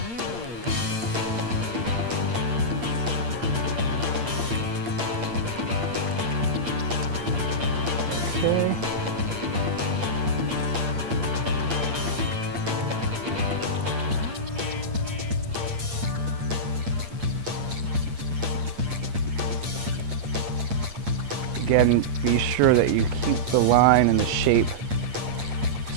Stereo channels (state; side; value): late; left; 8.6 ms